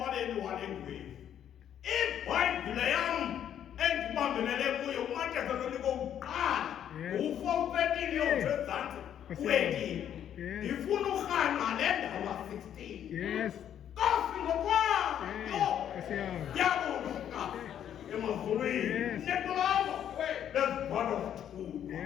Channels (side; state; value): right; quieter; 9.9 dB